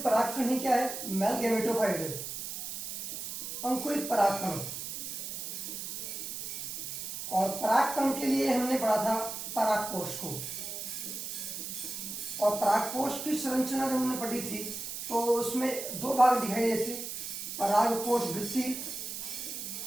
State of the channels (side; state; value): right; noise; hiss, 6 dB below the sound